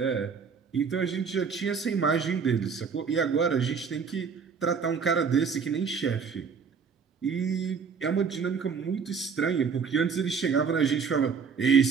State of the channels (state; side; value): quieter; left; 5.9 dB